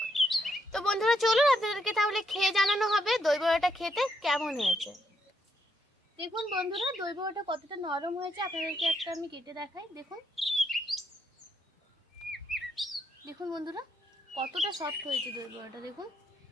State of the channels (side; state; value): both; normal; correlation 0.77